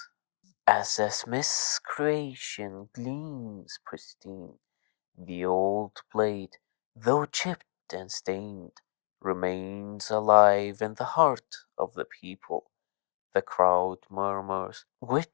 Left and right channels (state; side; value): silent; right; digital silence